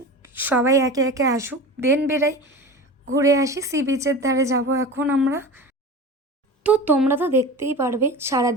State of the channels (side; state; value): both; normal; correlation 0.31